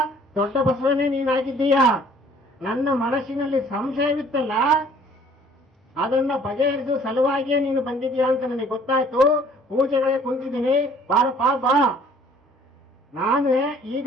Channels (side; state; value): both; normal; correlation 0.55